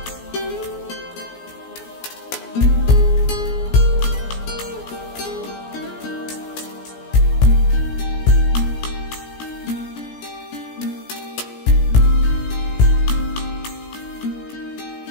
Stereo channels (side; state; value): right; late; 17 ms